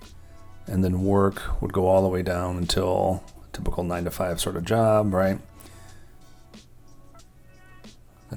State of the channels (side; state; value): both; identical; correlation 1.00